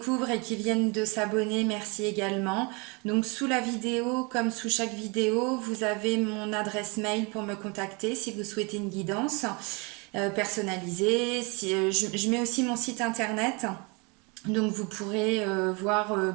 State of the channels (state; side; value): quieter; left; 29.8 dB